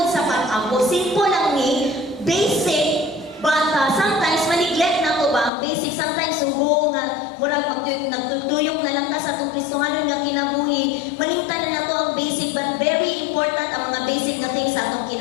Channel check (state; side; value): drops out; right; at 5.5 s